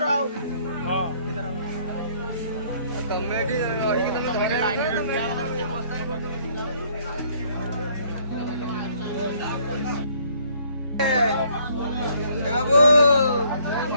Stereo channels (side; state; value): both; inverted; correlation -0.62